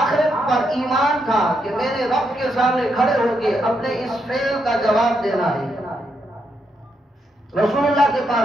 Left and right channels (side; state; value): both; normal; correlation 0.80